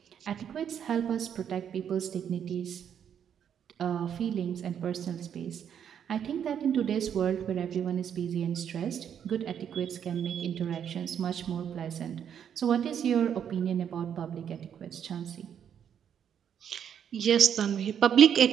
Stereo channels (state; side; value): quieter; left; 8.6 dB